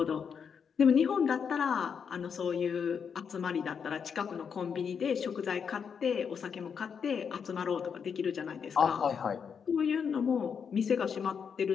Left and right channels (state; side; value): quieter; right; 6.7 dB